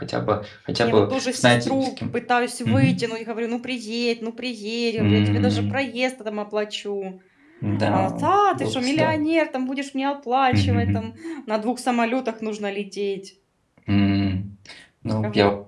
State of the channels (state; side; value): identical; both; correlation 1.00